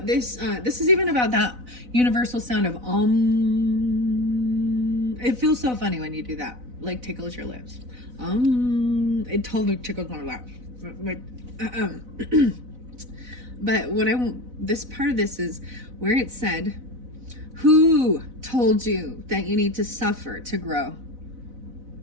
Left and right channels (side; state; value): left; late; 4.0 ms